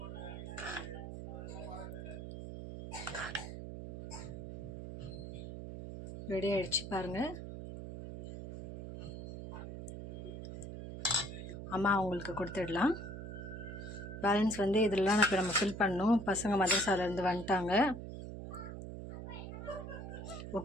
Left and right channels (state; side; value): noise; right; hum, 8 dB below the sound